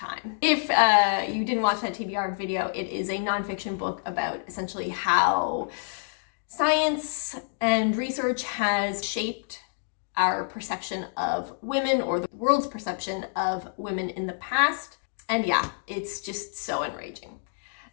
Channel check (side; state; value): right; silent; digital silence